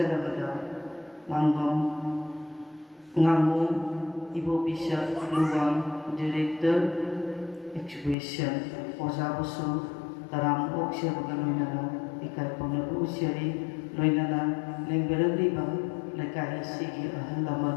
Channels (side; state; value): right; drops out; at 8.2 s